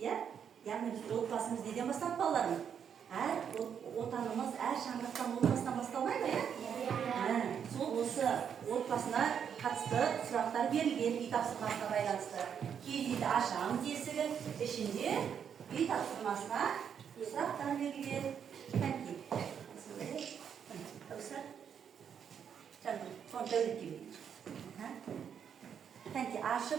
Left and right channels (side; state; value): left; quieter; 7.9 dB